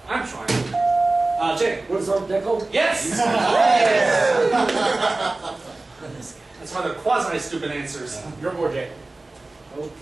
I'm trying. Jay. What is Art Deco? Yes! That's why they're quasi-stupid answers. Your board, Jay.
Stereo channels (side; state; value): left; quieter; 3.1 dB